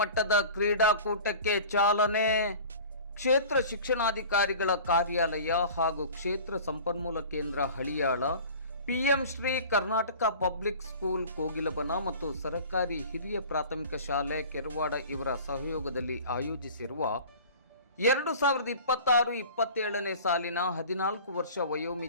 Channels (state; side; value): inverted; both; correlation -0.41